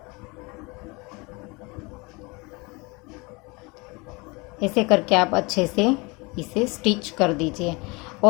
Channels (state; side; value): quieter; right; 26.5 dB